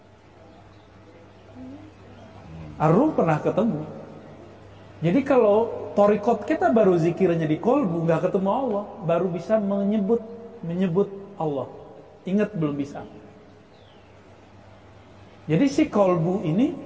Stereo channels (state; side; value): identical; both; correlation 1.00